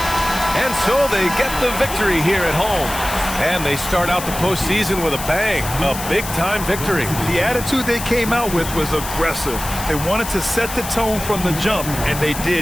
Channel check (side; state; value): left; noise; hiss, 9 dB below the sound